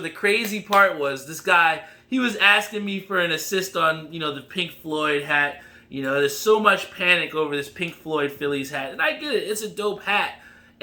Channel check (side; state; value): both; identical; correlation 1.00